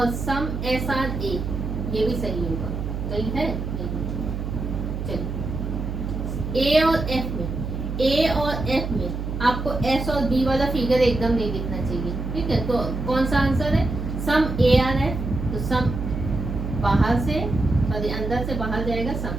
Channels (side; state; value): right; noise; hum, 4 dB below the sound